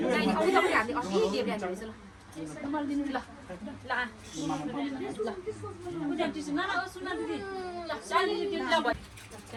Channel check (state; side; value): identical; both; correlation 1.00